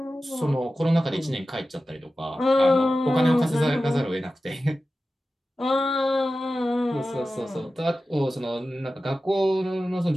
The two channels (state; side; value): normal; both; correlation 0.94